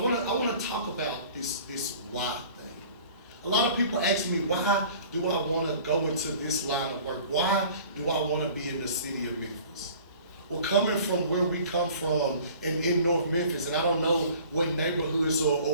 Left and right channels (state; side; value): inverted; both; correlation -0.47